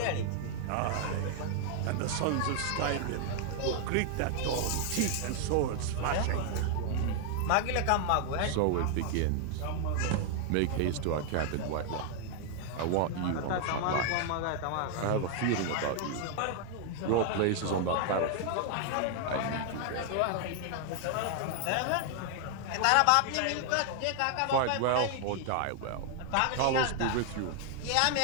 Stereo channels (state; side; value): different; both; correlation 0.00